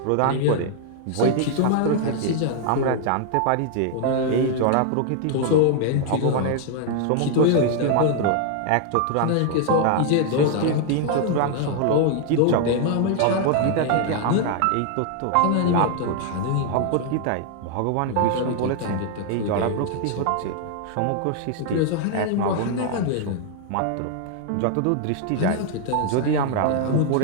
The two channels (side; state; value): both; different; correlation 0.00